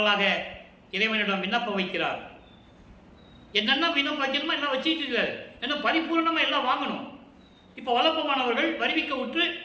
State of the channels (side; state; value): both; identical; correlation 1.00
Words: இறைவனிடம் விண்ணப்பம் வைக்கிறார். என்னென்ன விண்ணப்பம் வைக்கணுமோ எல்லாம் வச்சுட்டு இருக்காரு. என்ன பரிபூர்ணமா எல்லாம் வாங்கணும். இப்ப வளப்பமானவர்கள் வருவிக்க உற்று